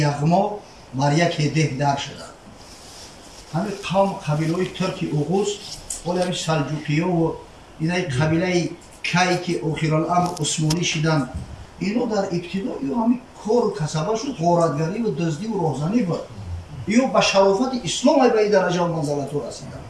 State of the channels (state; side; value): identical; both; correlation 1.00